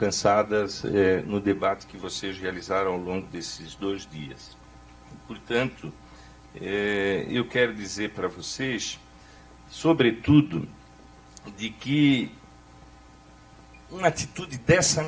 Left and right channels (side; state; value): both; identical; correlation 1.00